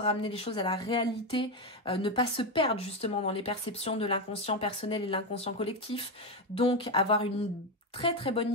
les choses à la réalité, ne pas se perdre justement dans les perceptions de l'inconscient personnel et l'inconscient collectif. Donc avoir une très très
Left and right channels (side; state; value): both; normal; correlation 0.11